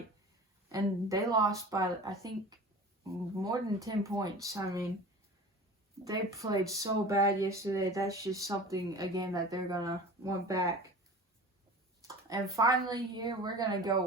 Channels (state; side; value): normal; both; correlation 0.38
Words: and they lost by, I think, more than 10 points. I mean, they played so bad yesterday. That's just something, again, that they're going to want back. And finally here, we're going to